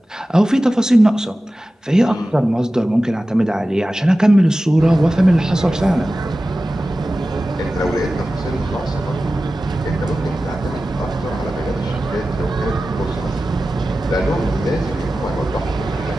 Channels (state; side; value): normal; both; correlation 0.95